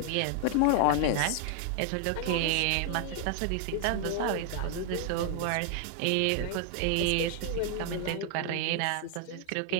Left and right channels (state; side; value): different; both; correlation 0.00